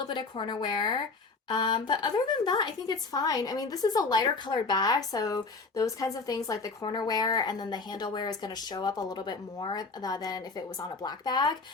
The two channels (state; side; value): quieter; right; 4.0 dB